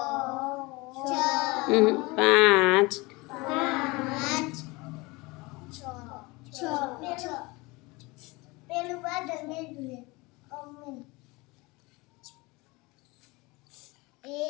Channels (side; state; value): right; quieter; 24.1 dB